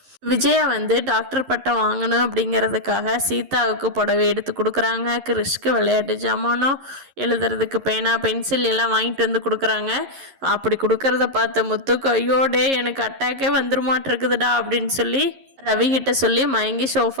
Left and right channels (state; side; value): late; left; 11 ms